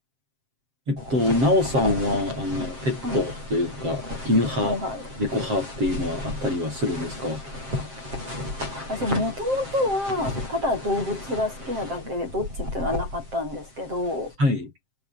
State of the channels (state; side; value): late; left; 7.6 ms